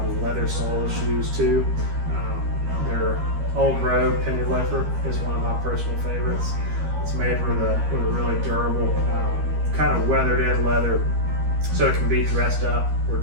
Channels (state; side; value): late; left; 13 ms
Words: of leather sole shoes too. Their Old Road Penny Loafer is one of my personal favorites. It's made with a really durable, kind of weathered in leather, so it can be dressed up or